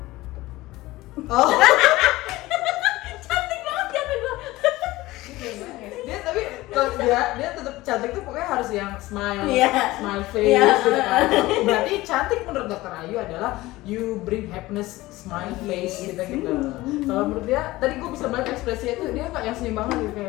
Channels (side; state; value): right; quieter; 18.6 dB